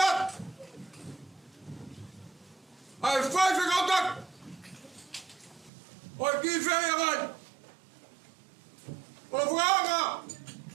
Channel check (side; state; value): left; drops out; at 5.7 s